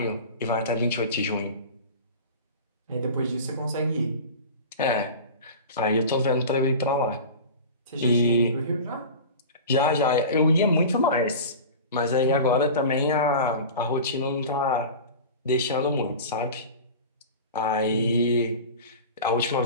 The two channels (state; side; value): inverted; both; correlation -0.34